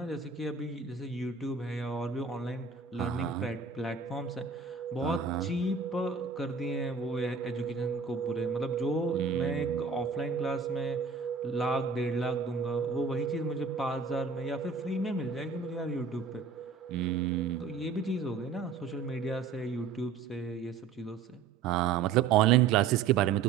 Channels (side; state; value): left; quieter; 5.6 dB